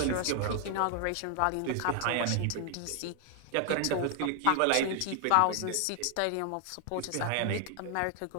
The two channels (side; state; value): both; different; correlation 0.00